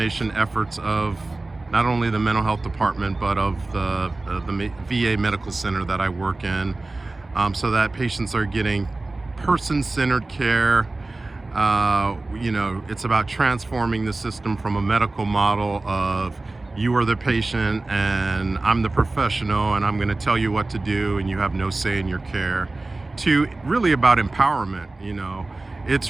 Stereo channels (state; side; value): quieter; left; 3.1 dB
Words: efforts of not only the mental health department, but of the VA medical center that I work in, so that patients are getting person-centered care. It's about transforming the system from a medical model of you are the patient and I'm the professional and I'm going to tell you what to do and you have no say in your care, to really about empowerment. It's